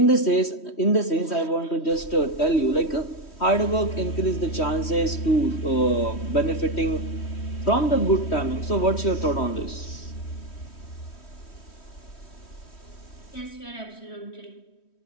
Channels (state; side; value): late; right; 3.1 ms